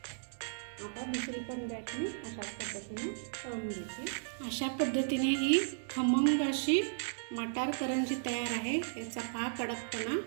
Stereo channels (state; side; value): silent; left; digital silence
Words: आता दुसरी पण बॅच मी अशाच पद्धतीने तळून घेते. अशा पद्धतीने ही खमंग अशी मटार करंजी तयार आहे. याचा पहा कडकपणा,